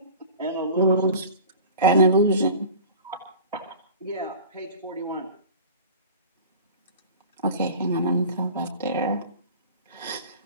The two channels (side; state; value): both; inverted; correlation -0.39